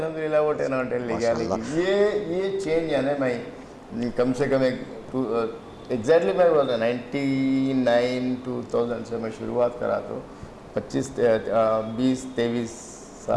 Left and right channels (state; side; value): identical; both; correlation 1.00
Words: वो 10 on 10 लेके आने की ये चेंज यानी मैं कम से कम एग्जैक्टली मैं बोल रहा 99-2000 से मैं शुरुआत करा तो 20-23